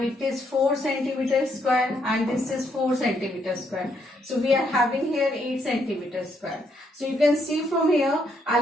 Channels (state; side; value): normal; both; correlation 0.74